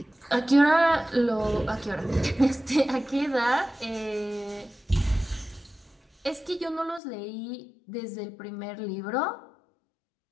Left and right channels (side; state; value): right; drops out; at 7.0 s